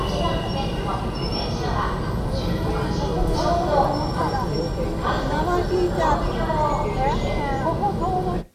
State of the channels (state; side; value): identical; both; correlation 1.00